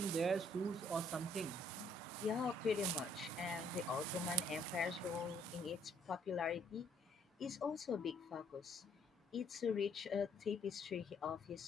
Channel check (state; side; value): normal; both; correlation 0.65